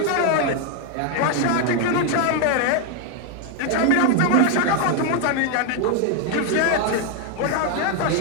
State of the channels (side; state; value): both; different; correlation 0.01